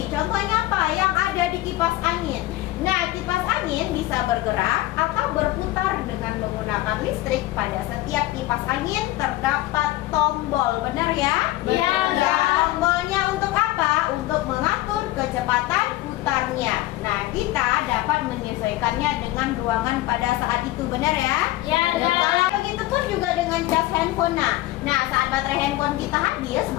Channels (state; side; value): quieter; right; 17.3 dB